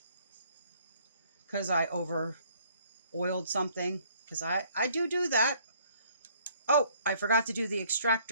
because I over oiled something, because I do that. Oh, I forgot to do the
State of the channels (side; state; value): both; inverted; correlation -0.61